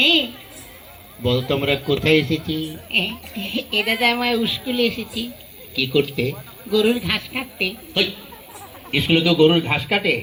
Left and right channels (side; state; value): both; identical; correlation 1.00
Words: বল, তোমরা কোথায় এসেছি? এ দাদা আমার স্কুলে এসেছি কি করতে? গরুর ঘাস কাটতে। হই, স্কুলে তো গরুর ঘাস কাটে?